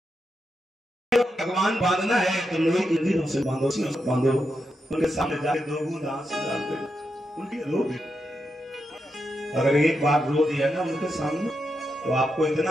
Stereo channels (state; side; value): normal; both; correlation 0.85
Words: भगवान बांधना है तो लोहे की जंजीरों से बांधो, बांधो उनके सामने जाके 2 बूंद आंसू डाल दो, उनकी रो दे। अगर एक बार रो दिया ना उनके सामने तो आपको